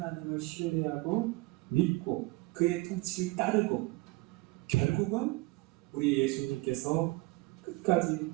신뢰하고 믿고 그의 통치를 따르고 결국은 우리 예수님께서 끝까지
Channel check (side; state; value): left; quieter; 22.7 dB